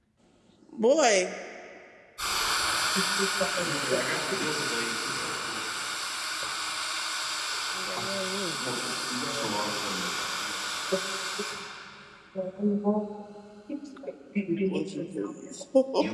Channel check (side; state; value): both; identical; correlation 1.00